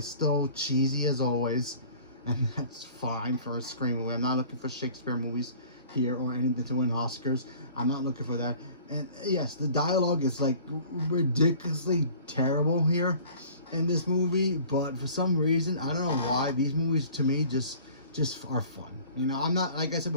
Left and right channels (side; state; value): both; inverted; correlation -0.48